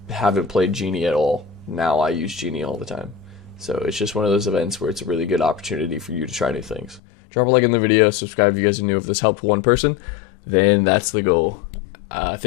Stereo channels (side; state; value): right; drops out; at 7.0 s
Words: haven't played Genie at all. Now I use Genie all the time. So it's just one of those events where it's a really good opportunity for you to try new things. Drop a like in the video, subscribe if you guys are new. If this helped one person, then that's the goal.